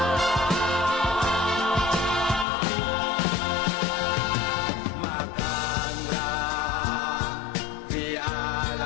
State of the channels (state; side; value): drops out; right; at 2.5 s